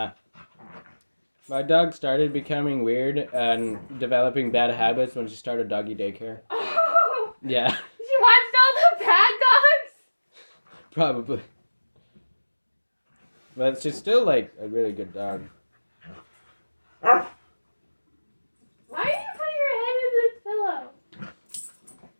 My dog started becoming weird and developing bad habits when she started doggy daycare. Oh. Yeah. She watched all the bad dogs? Probably. But she's still like a really good dog. Why are you putting your head in this pillow?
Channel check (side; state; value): both; inverted; correlation -1.00